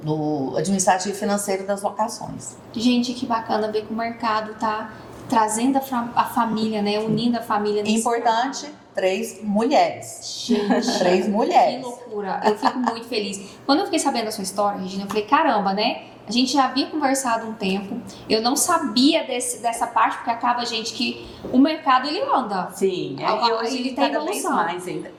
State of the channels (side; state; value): both; identical; correlation 1.00